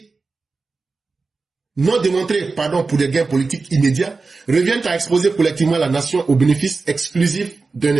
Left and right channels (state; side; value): quieter; left; 4.1 dB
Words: pour des gains politiques immédiats, revient à exposer collectivement la nation au bénéfice exclusif d'un